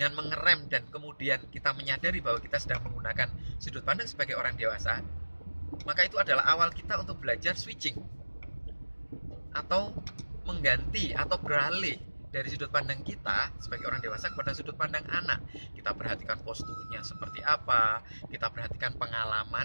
mengerem dan kemudian kita menyadari bahwa kita sedang menggunakan sudut pandang sebagai orang dewasa, maka itu adalah awal kita untuk belajar switching atau mengganti atau beralih dari sudut pandang kita sebagai orang dewasa kepada sudut pandang anak. Kita perhatikan posturnya seperti apa, kita perhatikan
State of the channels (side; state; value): both; inverted; correlation -1.00